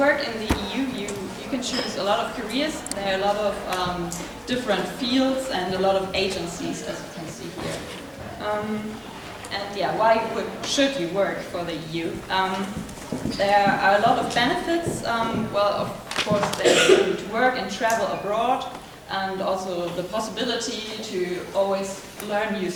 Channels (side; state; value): both; identical; correlation 1.00